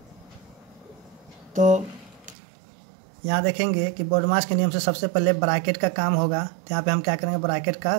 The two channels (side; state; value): left; drops out; at 2.4 s